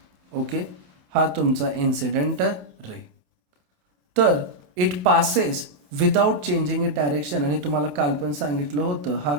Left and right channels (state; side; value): late; left; 28 ms